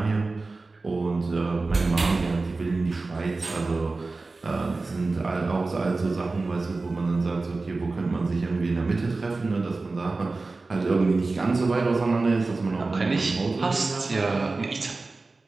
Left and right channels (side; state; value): left; quieter; 3.6 dB